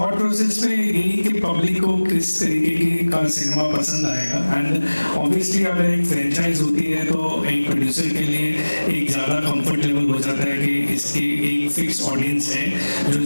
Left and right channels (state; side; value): inverted; both; correlation -1.00